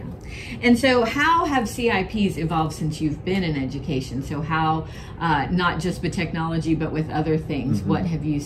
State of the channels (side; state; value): both; identical; correlation 1.00